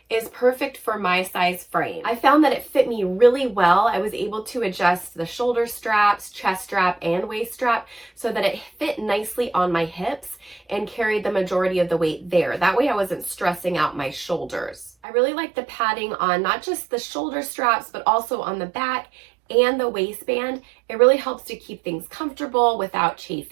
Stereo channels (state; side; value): drops out; left; at 14.9 s